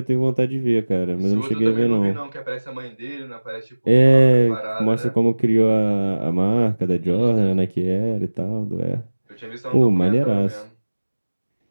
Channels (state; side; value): inverted; both; correlation -1.00